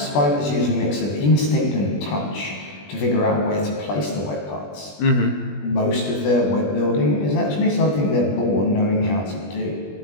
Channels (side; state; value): right; late; 20 ms